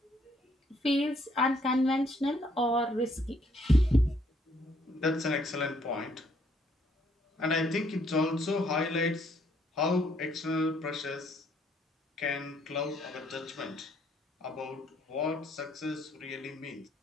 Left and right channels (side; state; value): both; normal; correlation 0.68